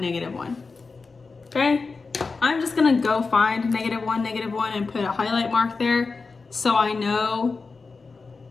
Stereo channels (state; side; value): quieter; right; 4.3 dB